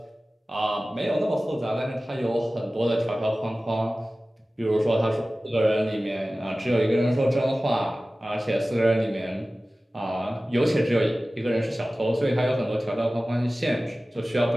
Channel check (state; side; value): normal; both; correlation 0.97